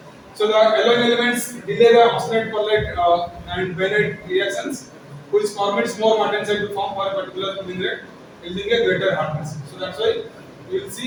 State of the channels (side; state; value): both; identical; correlation 1.00